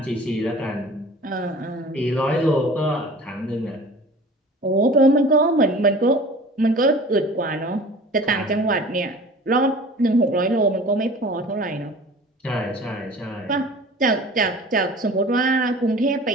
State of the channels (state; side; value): normal; both; correlation 0.43